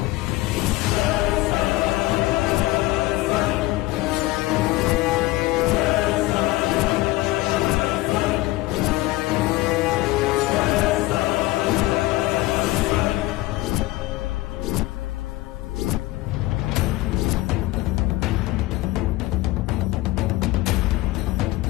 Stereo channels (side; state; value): right; quieter; 18.3 dB